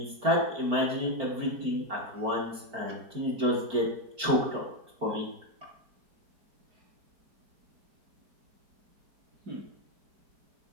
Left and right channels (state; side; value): late; left; 4.5 ms